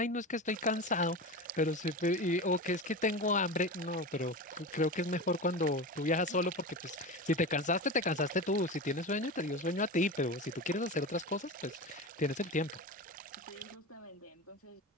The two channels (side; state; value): both; normal; correlation 0.26